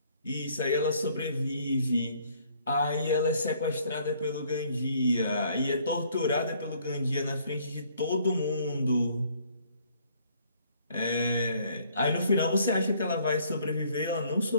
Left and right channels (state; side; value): inverted; both; correlation -0.62